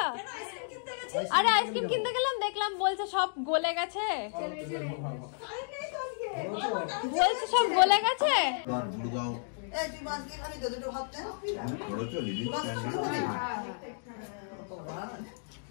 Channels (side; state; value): right; silent; digital silence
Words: আরে আইসক্রিম কিনতে গেলাম, দেখলাম বলছে সব গলে গেছে, বলছে সব গলে গেছে।